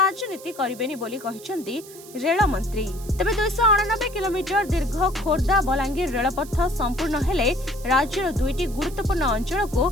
करिबेनी बोली कहिसंती रेल मंत्री। तेबे 289 किलोमीटर दीर्घ खोर्धा बलांगीर रेलपथ संपूर्ण हेले राज्यर दुईटी गुरुत्वपूर्ण अंचल को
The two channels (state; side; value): noise; right; hiss, 18 dB below the sound